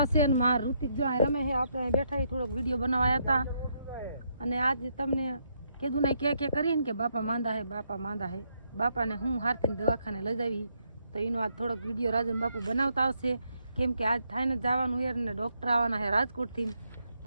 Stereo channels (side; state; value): both; inverted; correlation -0.76